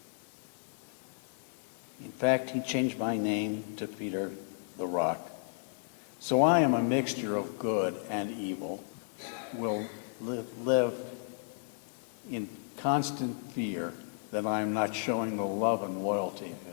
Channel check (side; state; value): right; silent; 56 dB below the other